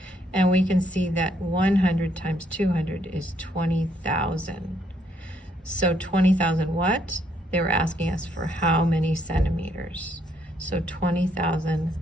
and we can see that 100 times 200 is 20,000. So 20,000 what? They were asking us for how many centimeters. So 20,000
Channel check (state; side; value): normal; both; correlation 0.71